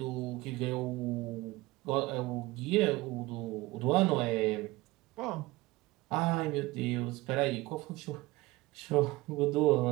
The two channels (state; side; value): quieter; left; 20.3 dB